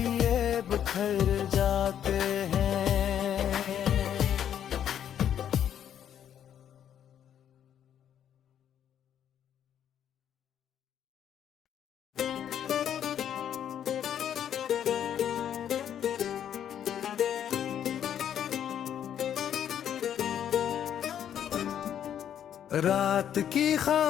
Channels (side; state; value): right; quieter; 9.7 dB